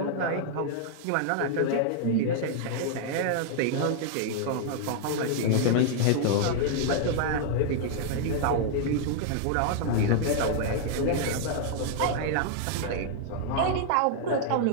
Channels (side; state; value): both; different; correlation -0.01